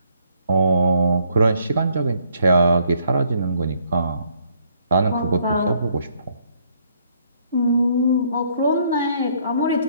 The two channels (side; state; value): both; inverted; correlation -0.68